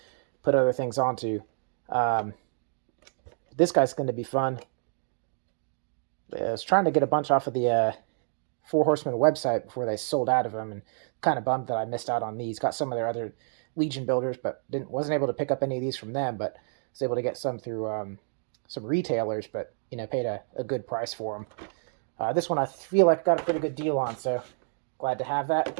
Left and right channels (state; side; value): silent; left; digital silence